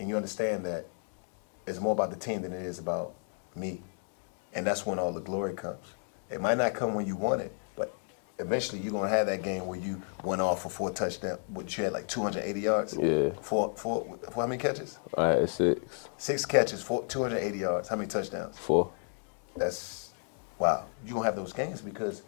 you understand that it's more about the team than it is about me. And that's when all the glory comes. It might not come when you want it, but eventually you're going to have that game where you went off for 4 touchdowns. What, you had like 280 yards? Yeah. For how many catches? All right, 6. 6 catches, 280 yards. How many touchdowns? 4. That's, wow. You're going to have those games because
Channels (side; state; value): right; silent; 55 dB below the other